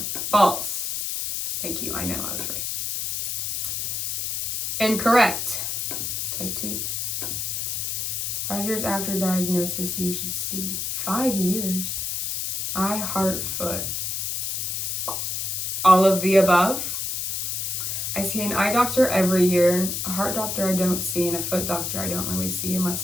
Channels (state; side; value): noise; left; hiss, 2 dB below the sound